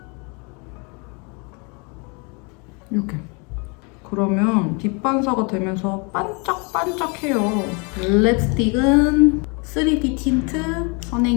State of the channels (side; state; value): right; quieter; 32.1 dB